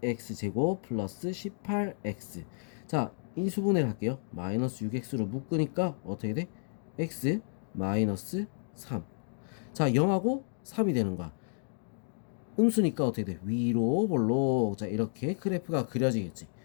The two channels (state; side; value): silent; right; digital silence